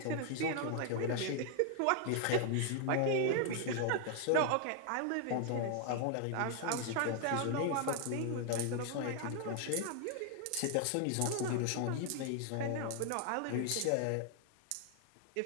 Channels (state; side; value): different; both; correlation 0.00